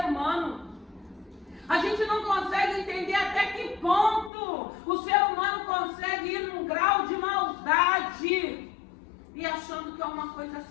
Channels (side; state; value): right; drops out; at 4.3 s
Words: humano. A gente não consegue entender até que ponto o ser humano consegue ir num grau de maldade e achando que é uma coisa